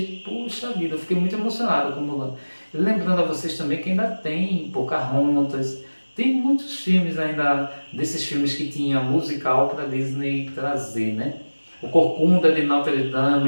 puxa vida, eu fiquei muito emocionado com Mulan. Lembrando a vocês também que ainda tem Pocahontas, tem muitos filmes ainda, desses filmes que tinha musical para Disney trazer, né? O Corcunda de Notre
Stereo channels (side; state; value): both; inverted; correlation -1.00